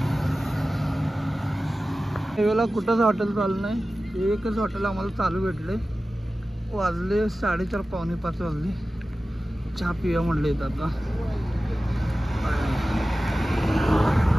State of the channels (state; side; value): normal; both; correlation 0.95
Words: वेळेला कुठंच हॉटेल चालू नाही. एकच हॉटेल आम्हाला चालू भेटले. वाजले 4:30 पावणे 5 वाजले. चहा पिया म्हणले आता.